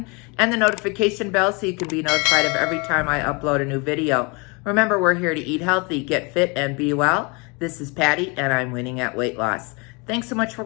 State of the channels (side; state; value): right; quieter; 29.9 dB